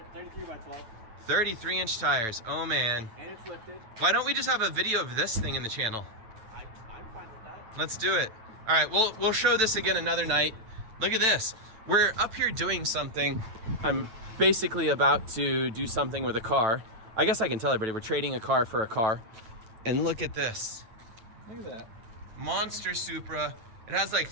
33 by 12. 33-inch tires, oh man. And it's lifted. Why don't we just have a video of this thing in the channel? I'm fine with that. Let's do it. All right, we'll show this again another night. Look at this. We're up here doing something. I'm basically about to do something with a car. I guess I can tell everybody we're trading a car for a car. And look at this. Look at that. Monster Supra. It has like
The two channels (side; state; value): left; late; 9.1 ms